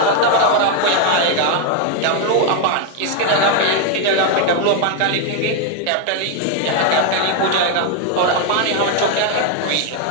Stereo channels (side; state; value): both; different; correlation 0.01